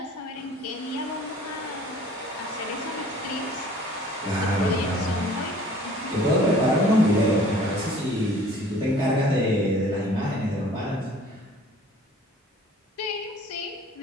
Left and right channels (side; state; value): both; normal; correlation 0.50